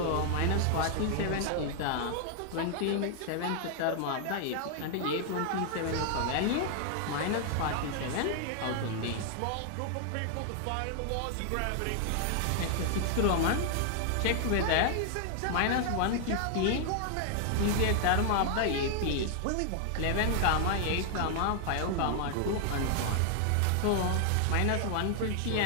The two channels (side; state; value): both; different; correlation 0.00